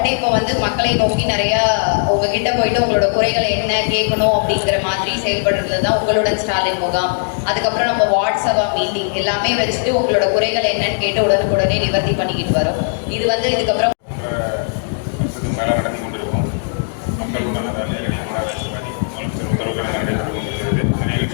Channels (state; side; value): silent; right; digital silence